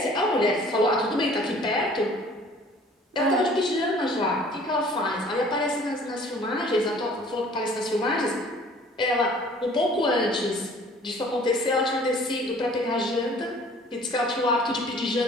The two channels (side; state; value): both; normal; correlation 0.52